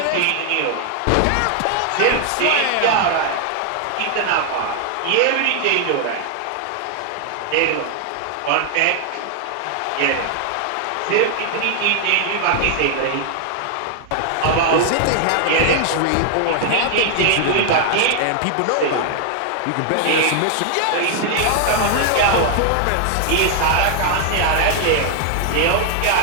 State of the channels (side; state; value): both; different; correlation 0.00